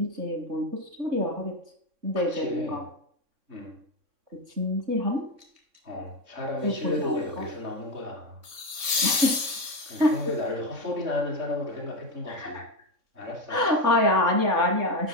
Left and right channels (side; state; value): left; late; 3.6 ms